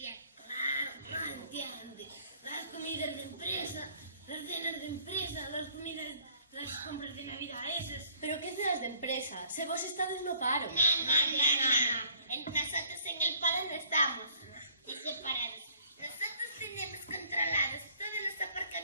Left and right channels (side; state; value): both; inverted; correlation -0.58